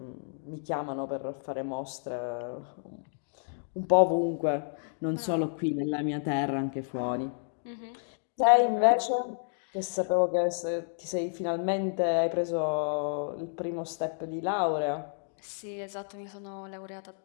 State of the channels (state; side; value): silent; right; digital silence